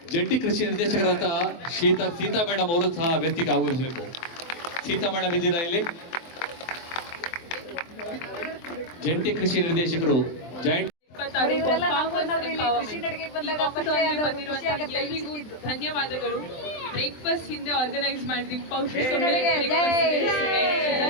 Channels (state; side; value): late; right; 23 ms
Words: ಜಂಟಿ ಕೃಷಿ ನಿರ್ದೇಶಕರಾದಂತಹ ಸೀತಾ ಮೇಡಮ್ ಅವರು ಸಹ ವೇದಿಕೆಗೆ ಆಗಮಿಸಬೇಕು. ಸೀತಾ ಮೇಡಮ್ ಇದ್ದೀರಾ ಇಲ್ಲಿ? ಜಂಟಿ ಕೃಷಿ ನಿರ್ದೇಶಕರು ಜಾಯಿಂಟ್. ಧನ್ಯವಾದಗಳು. ಬ್ರೇಕ್ಫಾಸ್ಟ್ ಹಿಂದೆ ಆರ್ಗನೈಸ್ ಮಾಡಿದ್ವಿ,